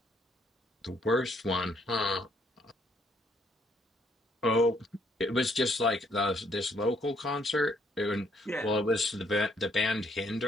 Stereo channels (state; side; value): normal; both; correlation 0.69